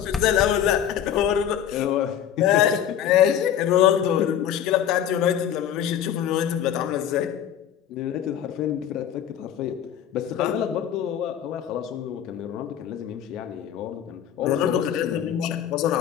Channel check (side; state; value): right; quieter; 9.9 dB